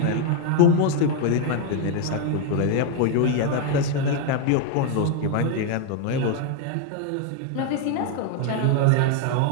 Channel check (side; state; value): both; different; correlation 0.01